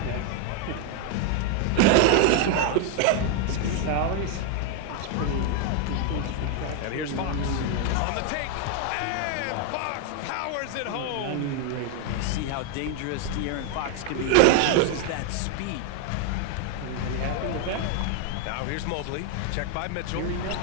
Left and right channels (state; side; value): different; both; correlation 0.01